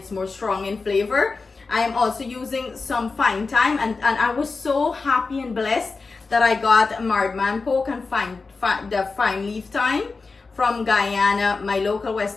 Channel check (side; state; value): right; quieter; 4.2 dB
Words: more strong in flavor. I am also using some fine thyme, and I was so happy and blessed that I got marred man poke and the fine leaf thyme from Guyana. My local